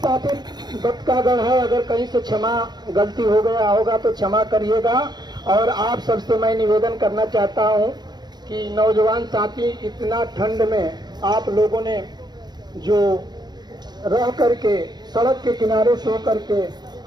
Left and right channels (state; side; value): late; left; 0.20 ms